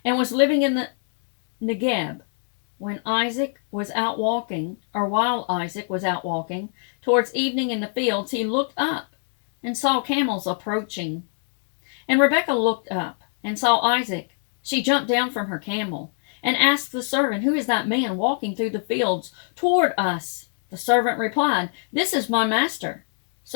and was living in the Negeb. While Isaac was out walking towards evening in the fields, he looked up and saw camels approaching. And Rebekah looked up and saw Isaac. She jumped down from her camel and asked the servant, "Who is that man walking through the fields toward us?" The servant replied, "This is my master."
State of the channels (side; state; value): right; silent; 62 dB below the other